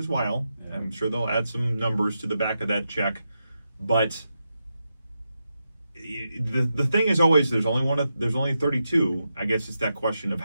while. Yeah. I'm sure they'll add some numbers to the back of that check, but the thing is always there's only 32. I guess it's that question of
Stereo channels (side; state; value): both; inverted; correlation -0.87